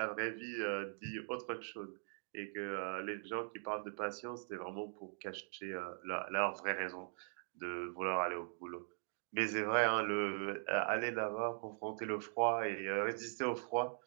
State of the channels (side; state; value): left; silent; digital silence